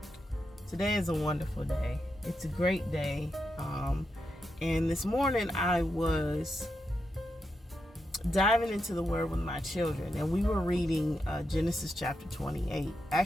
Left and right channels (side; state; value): both; normal; correlation 0.86